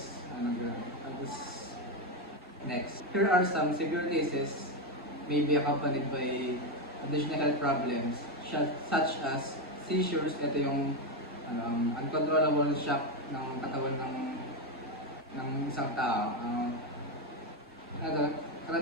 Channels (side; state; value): both; normal; correlation 0.09